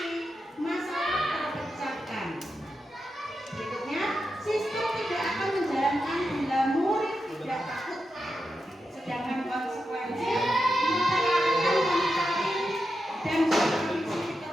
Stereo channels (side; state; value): both; normal; correlation 0.88